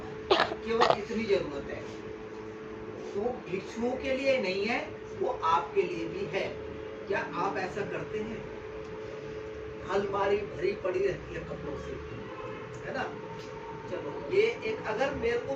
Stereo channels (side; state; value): both; identical; correlation 1.00